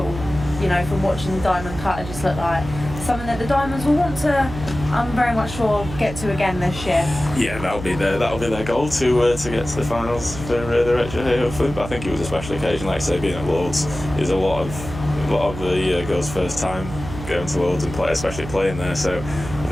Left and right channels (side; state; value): right; noise; hum, 10 dB below the sound